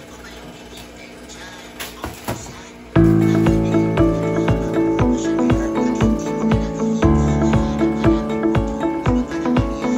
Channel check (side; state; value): both; identical; correlation 1.00